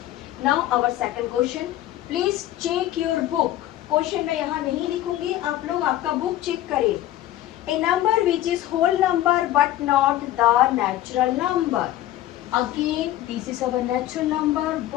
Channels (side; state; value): right; quieter; 14.0 dB